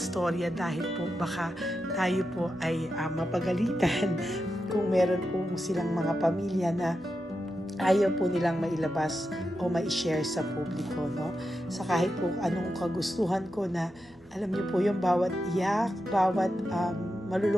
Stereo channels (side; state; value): both; normal; correlation 0.88